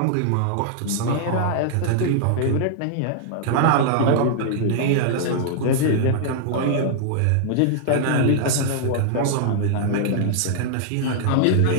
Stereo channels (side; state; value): both; different; correlation -0.01